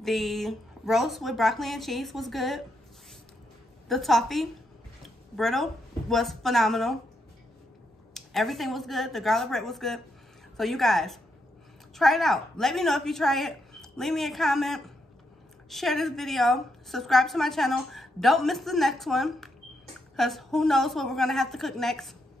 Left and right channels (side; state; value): both; normal; correlation 0.80